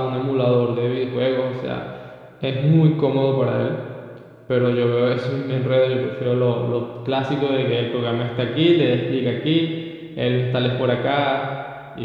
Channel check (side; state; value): both; identical; correlation 1.00